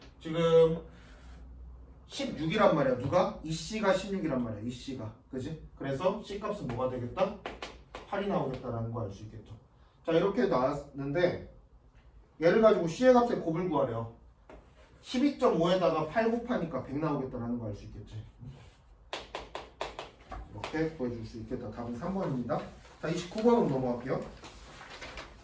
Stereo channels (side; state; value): both; identical; correlation 1.00